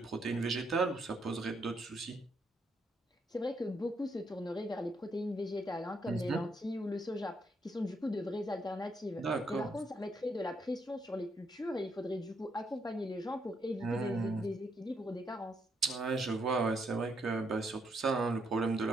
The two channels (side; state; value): both; normal; correlation 0.76